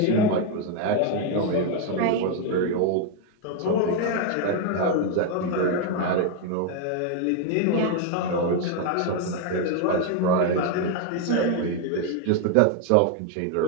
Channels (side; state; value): both; different; correlation 0.01